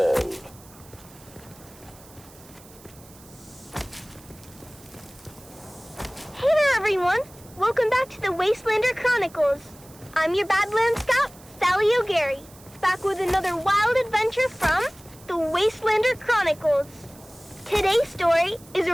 Hey there, everyone! Welcome back to the Wastelander Chronicles. I'm your Badlands Scout, Sally O'Gary, back with another wild adventure from the Wastelander Chronicles. Today's story is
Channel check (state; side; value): noise; right; hiss, 23 dB below the sound